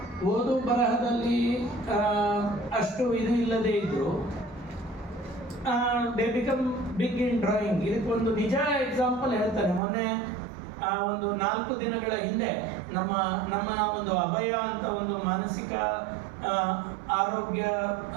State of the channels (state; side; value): drops out; left; at 9.8 s